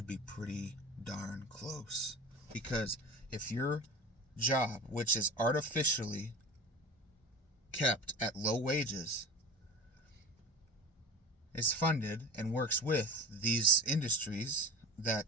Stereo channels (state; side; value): normal; both; correlation 0.33